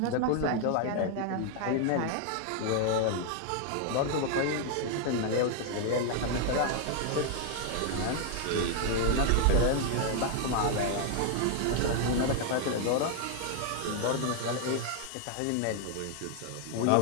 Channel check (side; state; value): both; different; correlation 0.00